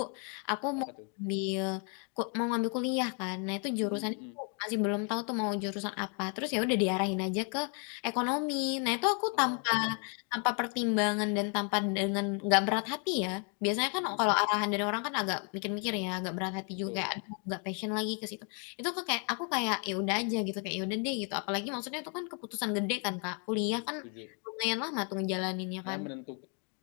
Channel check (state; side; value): quieter; right; 39.7 dB